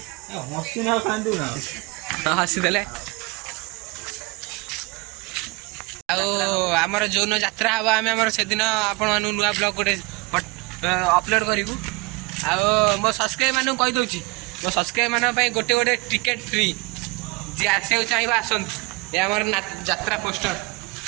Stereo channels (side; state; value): left; quieter; 25.7 dB